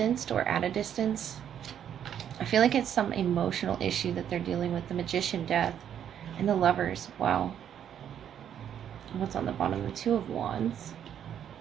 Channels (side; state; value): left; quieter; 9.4 dB